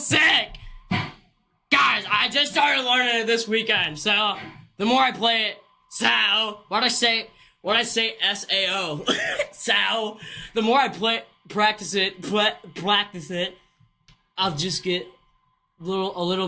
Guys, I just started learning it this weekend, so the more I play it, what I say S-A-O, the more I practice it, I'll just get a little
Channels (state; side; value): identical; both; correlation 1.00